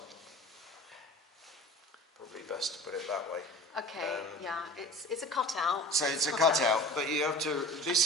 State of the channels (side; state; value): both; normal; correlation 0.40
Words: Probably best to put it that way. Okay, yeah, it's a cutout. So it's a cutout, but you have to.